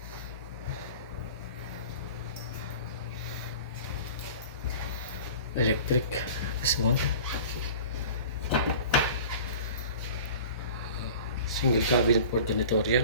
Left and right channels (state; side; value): inverted; both; correlation -0.41